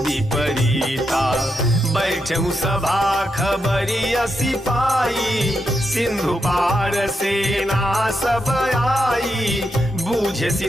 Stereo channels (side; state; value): both; normal; correlation 0.84